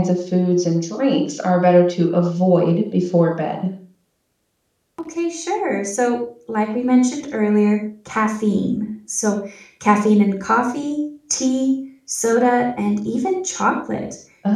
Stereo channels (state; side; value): identical; both; correlation 1.00